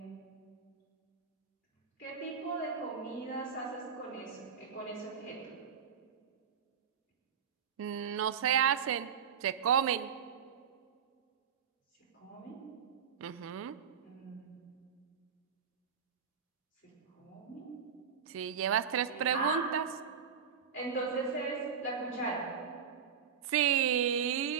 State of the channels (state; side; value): quieter; left; 7.2 dB